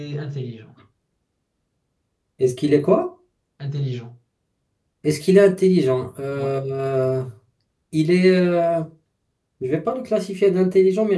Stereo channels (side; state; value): both; identical; correlation 1.00